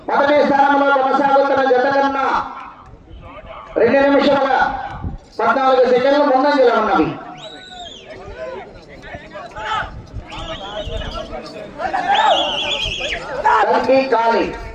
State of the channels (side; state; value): both; identical; correlation 1.00